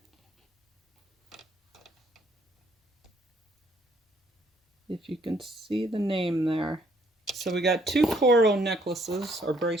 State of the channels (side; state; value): both; normal; correlation 0.66